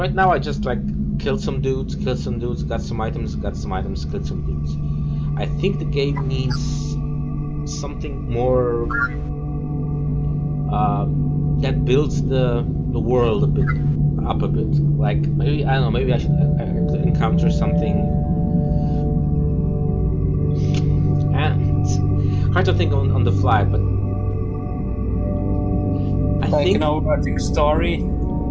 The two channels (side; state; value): both; identical; correlation 1.00